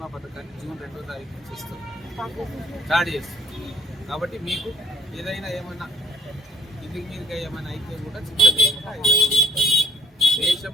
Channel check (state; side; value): normal; both; correlation 0.57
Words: పథకాన్ని జూన్ 2వ తారీఖు నుంచి ఇస్తుంది, స్టార్ట్ చేస్తుంది. కాబట్టి మీకు ఏదైనా ఏమన్నా ఇంటికి మీరుగా ఏమైనా అయితే కూడా చింత లేకుండా